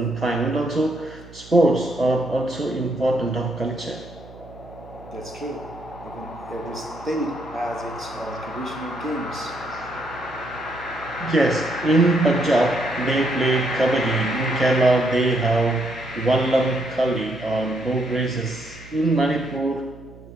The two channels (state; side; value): noise; right; hum, 19 dB below the sound